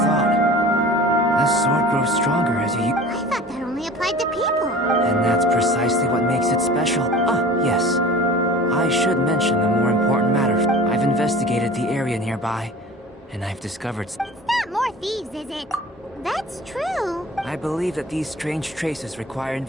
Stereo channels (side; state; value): both; normal; correlation 0.41